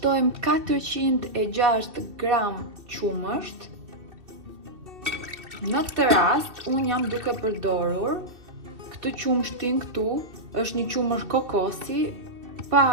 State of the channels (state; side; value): late; left; 2.6 ms